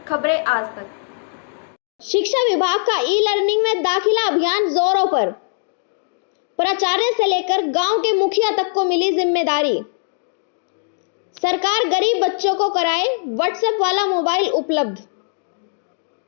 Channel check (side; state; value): right; silent; digital silence